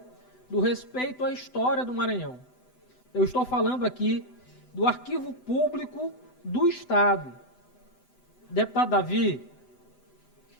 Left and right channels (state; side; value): late; right; 7.9 ms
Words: do respeito à história do Maranhão. Eu estou falando aqui do Arquivo Público do Estado. Deputado Davi,